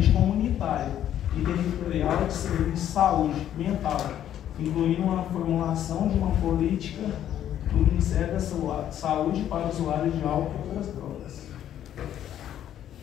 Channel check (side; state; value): right; quieter; 10.9 dB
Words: comunitária. e territorial de serviço de saúde mental, incluindo uma formulação de uma política do Ministério da Saúde para usuários de álcool e outras drogas.